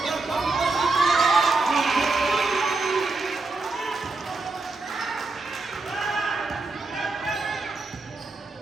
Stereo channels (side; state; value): left; quieter; 3.5 dB